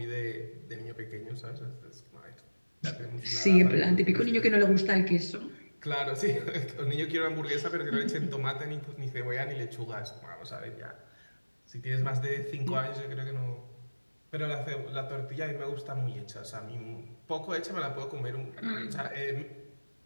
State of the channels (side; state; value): both; inverted; correlation -1.00